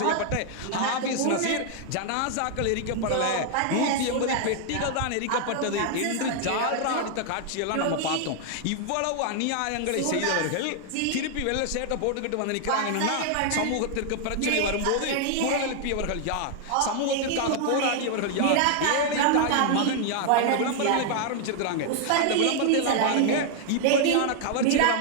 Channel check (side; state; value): both; different; correlation 0.00